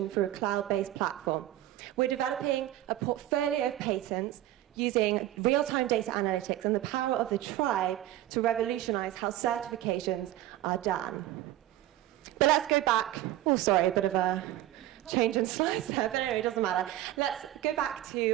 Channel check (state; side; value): quieter; left; 14.3 dB